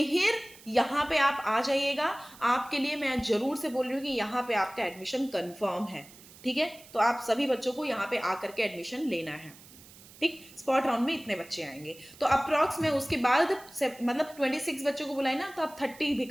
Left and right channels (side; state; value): right; noise; hiss, 21 dB below the sound